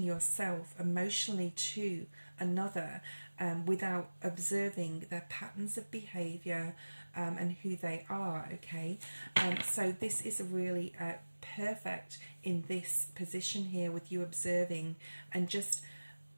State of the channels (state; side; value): inverted; both; correlation -1.00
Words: yourself emotionally to another without observing their patterns of behavior and who they are, okay? So this is really perfect in this position here, with you observing and just